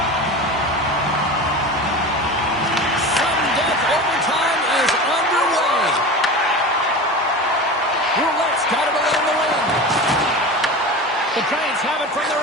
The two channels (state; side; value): normal; both; correlation 0.30